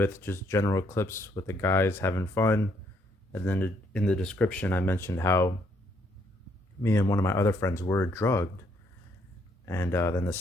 just general clips with the guys having fun, and then in the description I mentioned how me and one of my other friends were drugged. And then the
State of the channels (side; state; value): both; normal; correlation 0.70